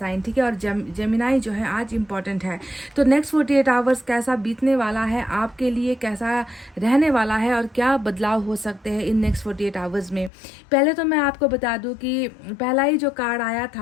ठीक है, और जेमिनाई जो है आज इम्पॉर्टेंट है। तो नेक्स्ट 48 आवर्स कैसा बीतने वाला है आपके लिए, कैसा रहने वाला है और क्या बदलाव हो सकते हैं इन नेक्स्ट 48 आवर्स में। पहले तो मैं आपको बता दूं कि पहला ही जो कार्ड आया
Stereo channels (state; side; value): drops out; right; at 10.3 s